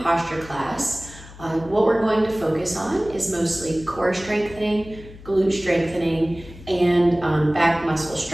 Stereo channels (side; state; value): left; noise; hum, 18 dB below the sound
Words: posture class. What we're going to focus on is mostly core strengthening, glute strengthening, and back muscle